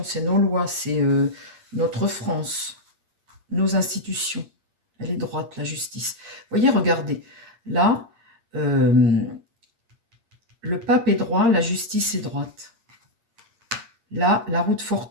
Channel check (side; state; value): left; late; 8.6 ms